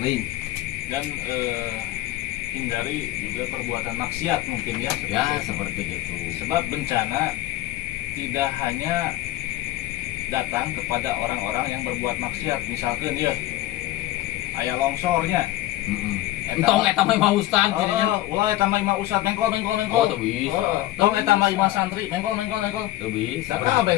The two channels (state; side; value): quieter; right; 15.7 dB